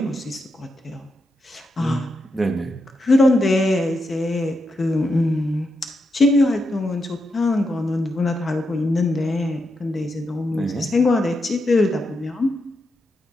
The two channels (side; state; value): both; normal; correlation 0.85